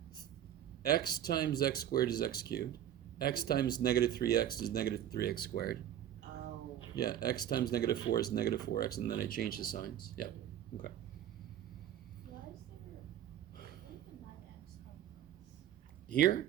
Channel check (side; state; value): left; quieter; 11.0 dB